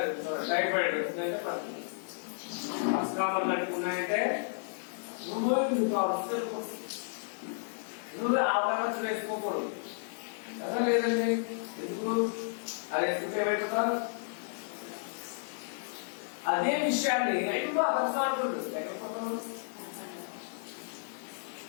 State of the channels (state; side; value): silent; right; digital silence